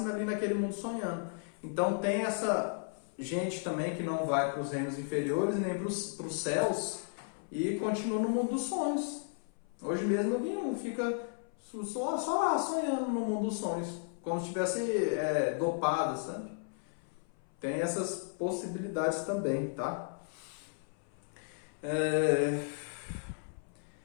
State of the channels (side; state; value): right; silent; 55 dB below the other